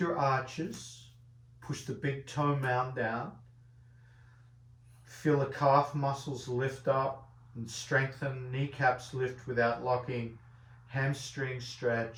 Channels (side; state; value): both; identical; correlation 1.00